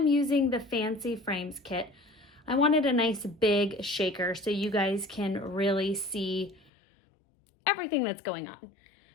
using the Fancy Frames kit. I wanted a nice big shaker so you guys can really see everything that's going on.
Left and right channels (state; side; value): drops out; right; at 6.7 s